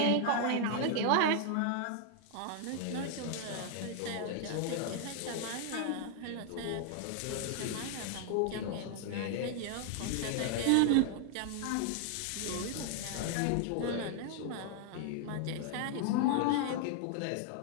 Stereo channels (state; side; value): different; both; correlation 0.00